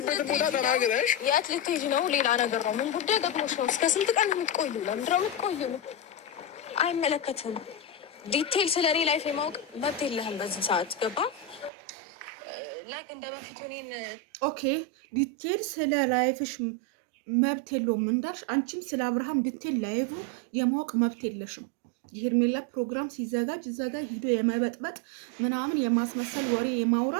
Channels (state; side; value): drops out; left; at 11.7 s